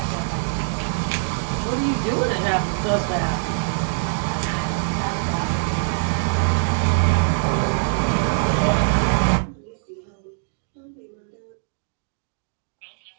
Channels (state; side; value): silent; left; digital silence